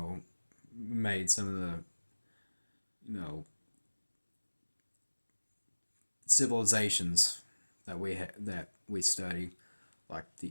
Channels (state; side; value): inverted; both; correlation -1.00